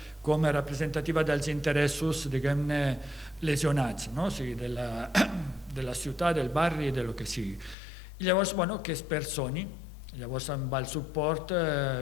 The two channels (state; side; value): drops out; right; at 7.8 s